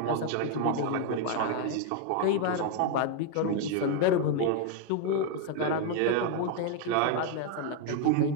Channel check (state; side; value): different; both; correlation 0.00